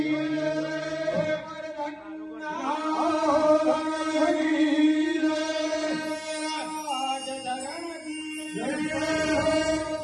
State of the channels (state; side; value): identical; both; correlation 1.00